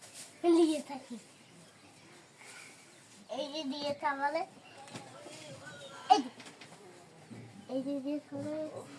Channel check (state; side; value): identical; both; correlation 1.00